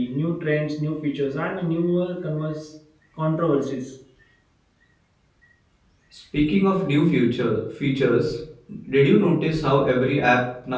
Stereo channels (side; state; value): both; identical; correlation 1.00